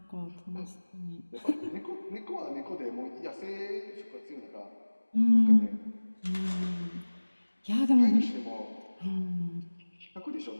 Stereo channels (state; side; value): inverted; both; correlation -1.00